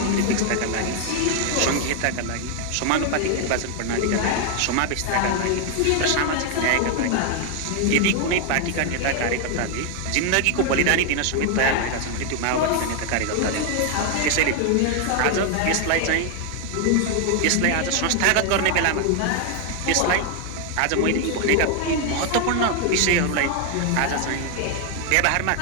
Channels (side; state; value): both; different; correlation 0.01